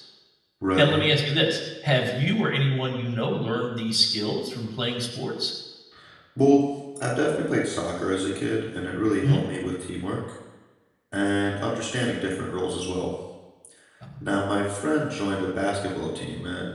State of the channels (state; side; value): identical; both; correlation 1.00